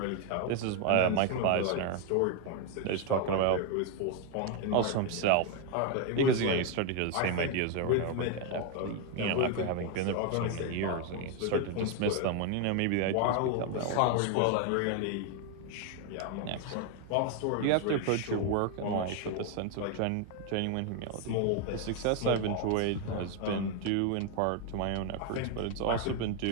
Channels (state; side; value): different; both; correlation 0.01